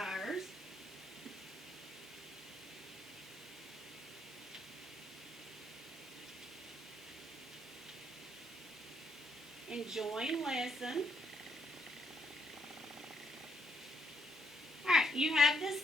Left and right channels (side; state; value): both; normal; correlation 0.74